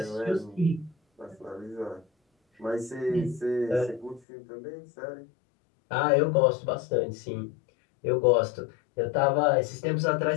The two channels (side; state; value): right; drops out; at 4.2 s